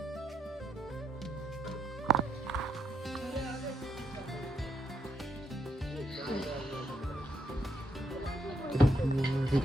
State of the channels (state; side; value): normal; both; correlation 0.78